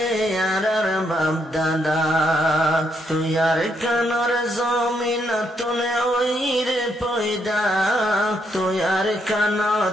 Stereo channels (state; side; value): normal; both; correlation 0.76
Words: আর বাপ দাদা তুয়ার কানর জমিন তুনে ওইরে পয়দা তুয়ার কান